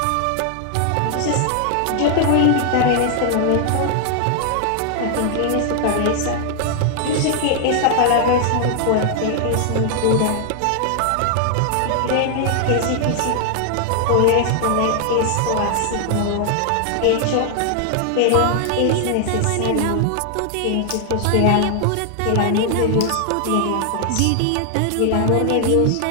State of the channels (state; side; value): different; both; correlation 0.00